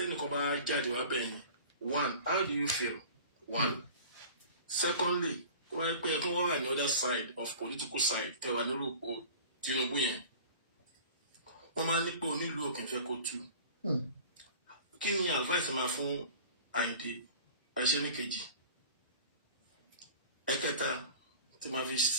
bá jáde wá bẹ́ẹ̀ ni 1 how do you feel 1 secondly tó bá jẹ́ pé ẹkún wọ́n wà ní other side of political side tẹ̀wá nílùú Tinubu yẹn wọ́n máa ní pé onílùú òkè fẹ́ kó tú kí ni advice máa fún Àyìndé àìṣe ní kejì ẹ̀kẹta tí máa fi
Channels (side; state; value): both; inverted; correlation -0.42